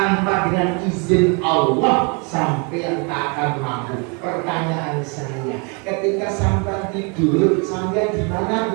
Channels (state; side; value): quieter; left; 33.9 dB